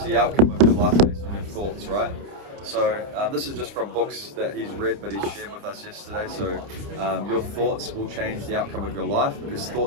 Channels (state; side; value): late; left; 30 ms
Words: the outcome of your life based on your thoughts, right? So this is just from books that he's read, but he shared with us yesterday. So your thoughts will change the outcome of your life, because